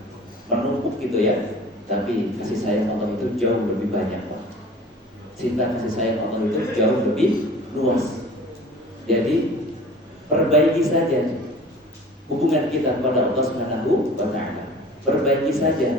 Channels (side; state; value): both; normal; correlation 0.43